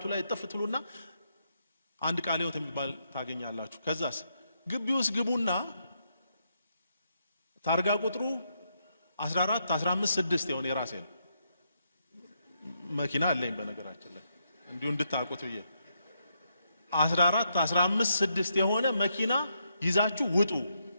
ላይ ጥፍትሉና አንድ ቃለ ሕይወት የሚባል ታገኛላችሁ። ከዛስ ግቢ ውስጥ ግቡና ታርጋ ቁጥሩ 14 15 6 የሆነ የራሴ ነው መኪና አለኝ በነገራችን ላይ እንዲሁ እንድታውቁት ብዬ 14 15 6 የሆነ መኪና ይዛችሁ ውጡ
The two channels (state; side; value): inverted; both; correlation -0.79